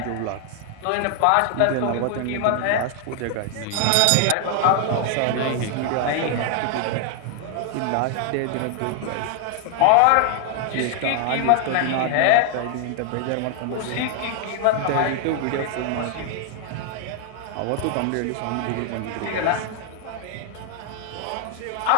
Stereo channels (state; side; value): different; both; correlation 0.00